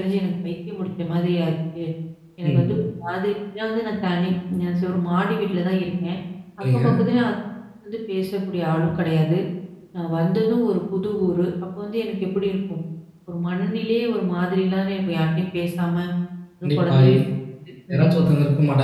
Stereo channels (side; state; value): both; identical; correlation 1.00